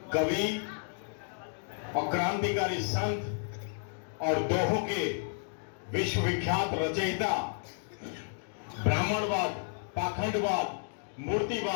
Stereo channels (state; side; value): silent; right; digital silence